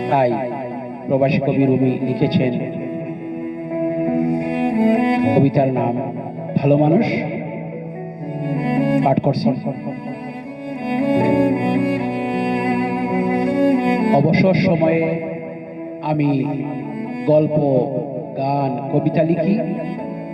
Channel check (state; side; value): identical; both; correlation 1.00